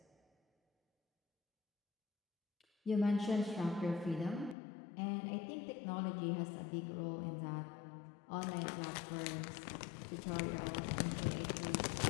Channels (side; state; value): right; drops out; at 4.5 s